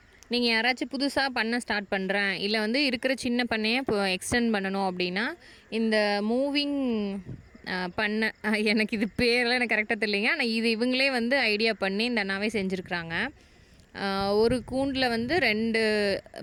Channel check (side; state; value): both; identical; correlation 1.00